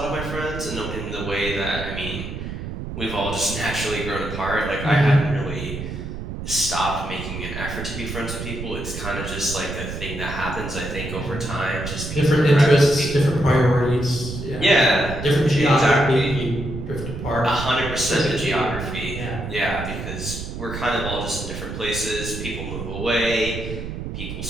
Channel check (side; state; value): right; noise; rumble, 7 dB below the sound